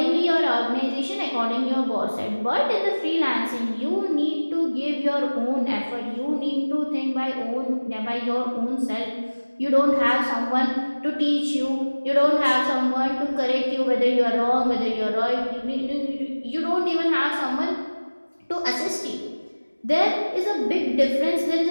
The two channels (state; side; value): inverted; both; correlation -1.00